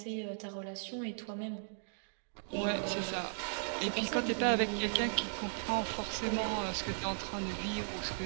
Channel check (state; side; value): silent; left; digital silence